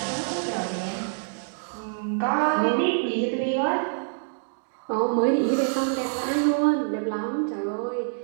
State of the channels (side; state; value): left; silent; digital silence